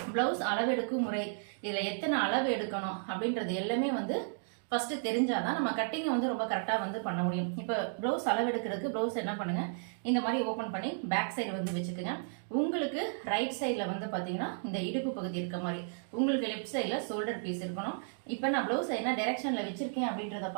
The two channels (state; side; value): silent; left; digital silence